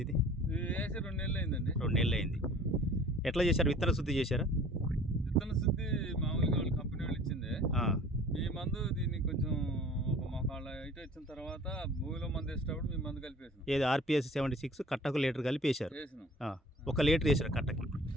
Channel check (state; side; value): normal; both; correlation 0.47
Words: ఇది వేసి 2 నెలలు అయిందండి. 2 నెలలు అయింది. ఎట్లా చేశారు? విత్తన శుద్ధి చేశారా? విత్తన శుద్ధి మామూలుగా వాళ్ళు కంపెనీ వాళ్ళు ఇచ్చిందే. మీ మందు దీన్ని కొంచెం ఒక మొక్కళ్ళ ఇటు వచ్చిన తర్వాత భూమిలో మందు వేసేటప్పుడు మీ మందు కలిపేసాం. ఏది RPS 76 కట్టకు లీటర్ కలిపేశారు? వేసినాం. 1 లీటర్ వేసారు కట్టకి?